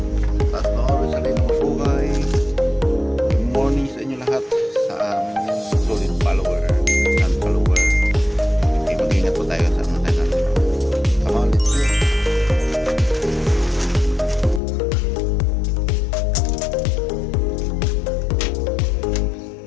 At noon, sa rin ng buhay. Good morning sa inyo lahat. Sa solid follower and follower. Okay, mag-ingat po tayo sa mga tayo. Come on, let's go.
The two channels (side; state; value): right; drops out; at 14.6 s